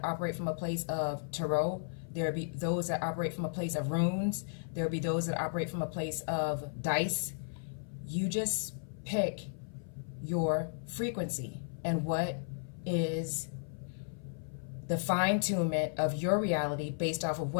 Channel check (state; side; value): silent; right; 55 dB below the other